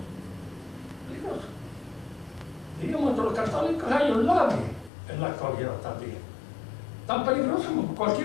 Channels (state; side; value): drops out; right; at 4.9 s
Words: Peligroso. Diríamos, entre los católicos hay un labi en la actualidad también. Tan peligroso como